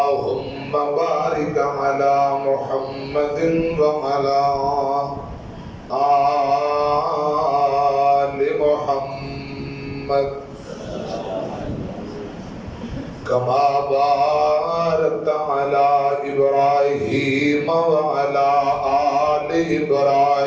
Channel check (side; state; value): both; identical; correlation 1.00